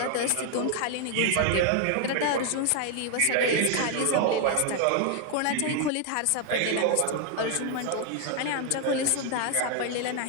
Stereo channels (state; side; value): different; both; correlation 0.00